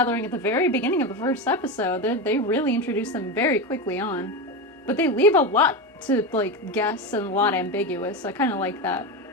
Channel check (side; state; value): both; normal; correlation 0.17